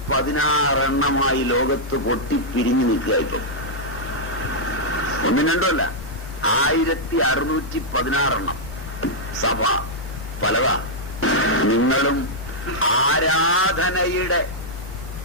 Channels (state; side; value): normal; both; correlation -0.06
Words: ലോകത്ത് പൊട്ടിപ്പിരിഞ്ഞു നിൽക്കുക. ഇപ്പം ഒന്നും രണ്ടുമല്ല, 1616 സഭ പലതാ. നിങ്ങളും ആരാധനയുടെ